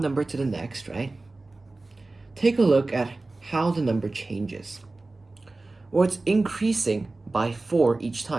number to the next, right? Take a look at how the number changes. Well, it's increasing by 4 each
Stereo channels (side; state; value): left; quieter; 3.2 dB